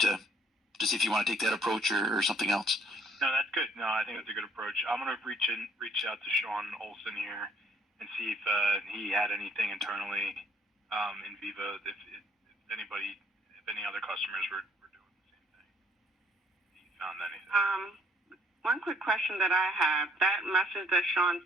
see if you want to take that approach or something else. No, that's good. No, I think that's a good approach. I'm gonna reach out to Sean Olson here and see if he had anything internally in Viva. If any other customers were doing the same thing. If he found anything. One quick question that I have: that message that Sean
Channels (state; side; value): normal; both; correlation 0.63